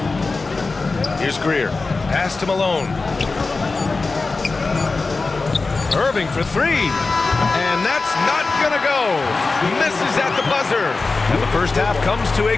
Here's Greer. Pass to Malone. Irving for 3. And that's not going to go. Misses at the buzzer. And the first half comes to a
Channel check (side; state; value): right; quieter; 3.8 dB